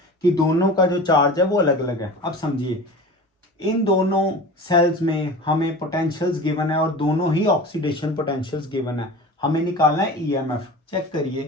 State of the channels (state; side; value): normal; both; correlation 0.35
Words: कि दोनों का जो चार्ज है वो अलग अलग है। अब समझिए, इन दोनों सेल्स में हमें पोटेंशियल्स गिवन है और दोनों ही ऑक्सीडेशन पोटेंशियल्स गिवन है। हमें निकालना है ईएमएफ। चेक